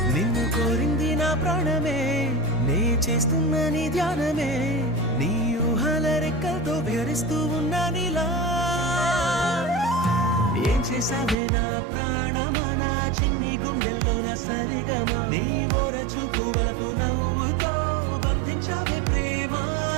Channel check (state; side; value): drops out; left; at 11.4 s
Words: నిన్ను కోరింది నా ప్రాణమే నే చేస్తున్న నీ ధ్యానమే నీ ఊహల రెక్కలతో విహరిస్తూ ఉన్నా నీలా ఏం చేసావే నా ప్రాణమా నా చిన్ని గుండెల్లో నా సరిగమా నీ ఓర చూపు వరకు నవ్వుతో బంధించావే ప్రేమ